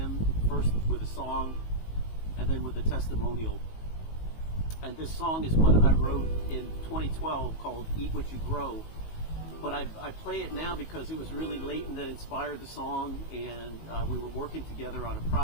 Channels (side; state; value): right; late; 19 ms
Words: first with a song and then with a testimonial. And this song is one I wrote in 2012 called Eat What You Grow. But I play it now because it was really Leighton that inspired the song, and we were working together on a